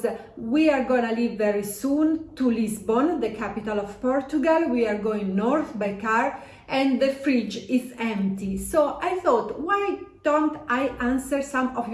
we are gonna leave very soon to Lisbon, the capital of Portugal. We are going north by car and the fridge is empty. So I thought, why don't I answer some of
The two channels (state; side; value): identical; both; correlation 1.00